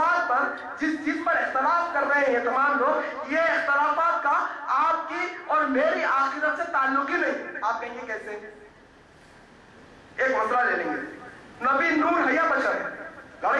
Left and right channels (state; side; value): identical; both; correlation 1.00